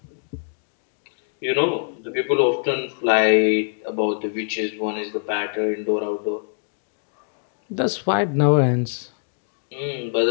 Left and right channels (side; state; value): right; silent; digital silence